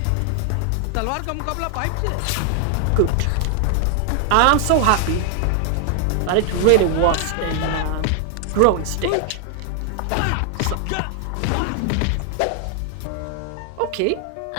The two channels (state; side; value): different; both; correlation 0.00